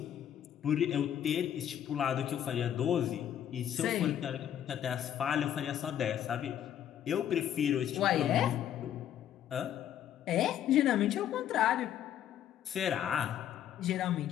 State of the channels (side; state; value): right; quieter; 10.4 dB